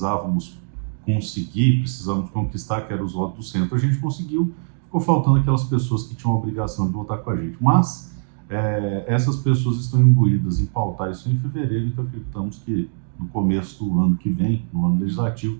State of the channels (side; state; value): left; silent; digital silence